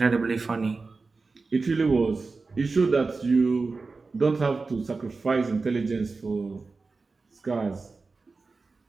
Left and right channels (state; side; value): quieter; left; 4.0 dB